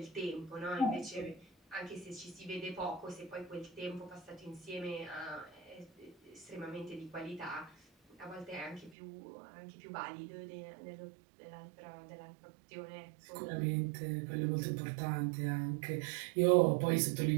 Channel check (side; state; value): left; drops out; at 9.0 s